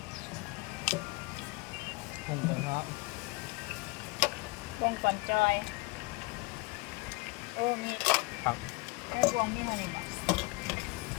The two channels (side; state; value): right; quieter; 25.6 dB